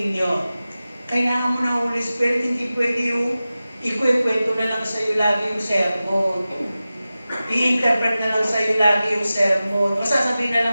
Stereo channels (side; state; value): both; inverted; correlation -0.95